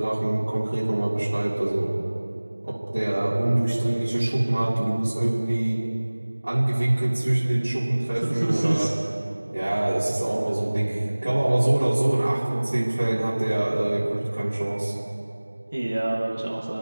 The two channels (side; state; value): both; inverted; correlation -1.00